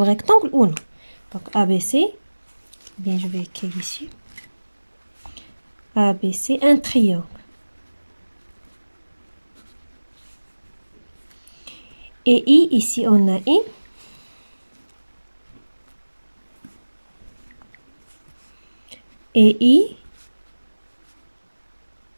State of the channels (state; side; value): inverted; both; correlation -1.00